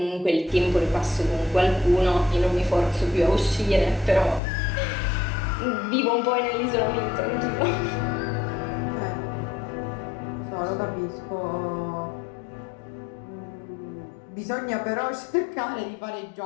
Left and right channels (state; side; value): drops out; right; at 4.4 s